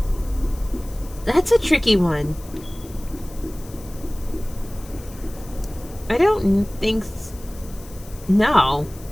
That's a tricky one. I don't think no.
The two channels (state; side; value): noise; left; hiss, 20 dB below the sound